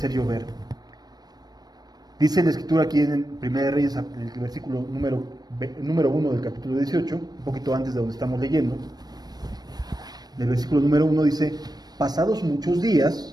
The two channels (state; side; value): late; left; 0.19 ms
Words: llover. Dice la escritura aquí en 1 Reyes, en el versículo número 1 del capítulo 18, un poquito antes de donde estamos leyendo. El versículo número 1 dice, pasados muchos